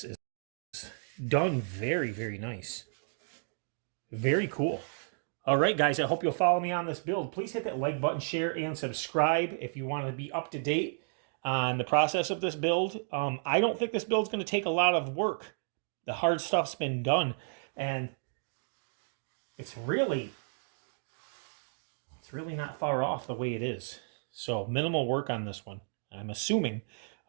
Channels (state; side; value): silent; left; digital silence